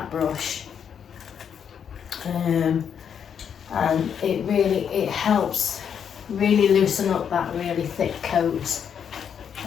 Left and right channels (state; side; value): quieter; right; 7.9 dB